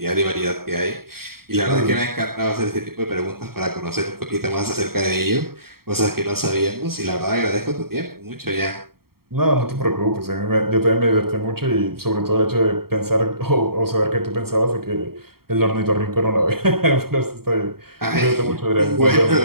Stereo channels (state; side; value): late; left; 0.94 ms